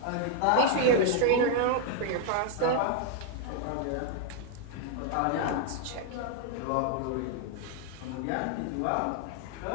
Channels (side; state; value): both; different; correlation 0.00